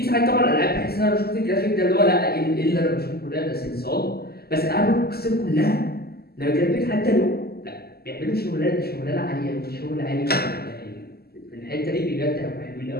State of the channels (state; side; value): late; right; 0.46 ms